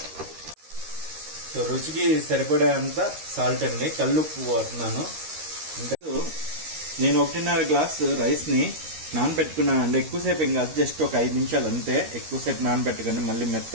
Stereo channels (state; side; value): late; left; 13 ms